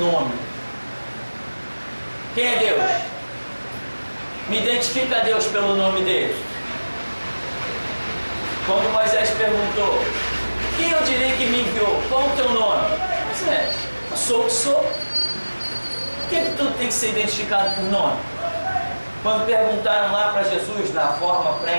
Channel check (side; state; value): both; inverted; correlation -1.00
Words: Quem é Deus? Me identifica a Deus pelo nome dele. Quando Moisés perguntou, quem eu direi que me enviou? Qual o teu nome? Moisés, eu sou o que sou. Por que tudo tem que ser identificado por nome? Quando perguntaram lá para Jesus, na forma